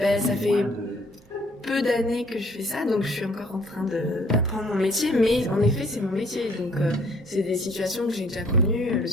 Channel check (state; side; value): normal; both; correlation 0.61